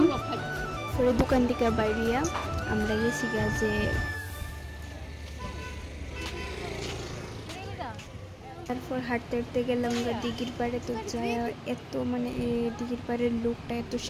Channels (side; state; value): both; identical; correlation 1.00